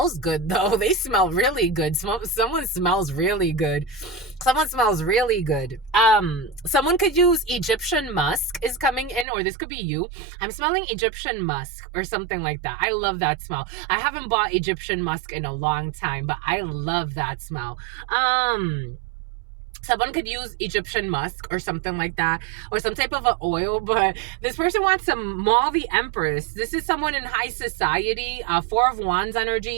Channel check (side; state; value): left; drops out; at 9.2 s